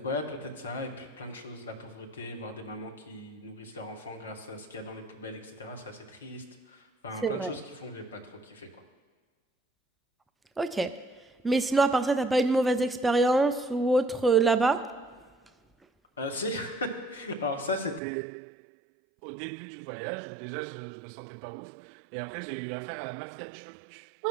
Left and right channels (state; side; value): drops out; left; at 18.0 s